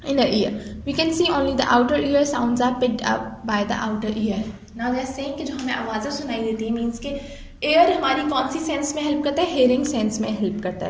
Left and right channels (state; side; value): identical; both; correlation 1.00